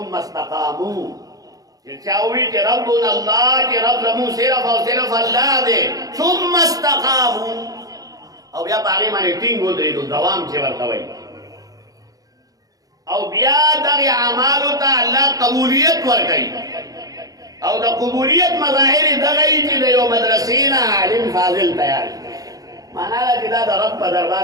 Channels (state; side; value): late; left; 0.17 ms